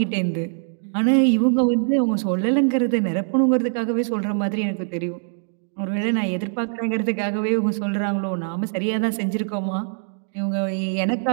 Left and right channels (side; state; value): left; silent; digital silence